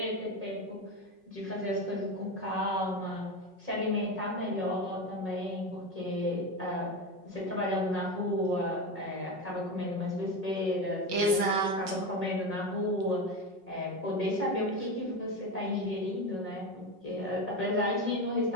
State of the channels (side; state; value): left; late; 5.4 ms